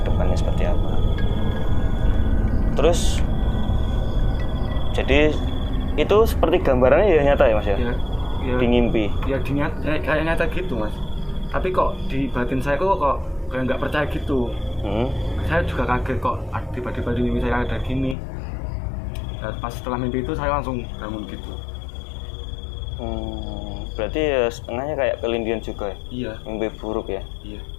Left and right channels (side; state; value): right; drops out; at 18.2 s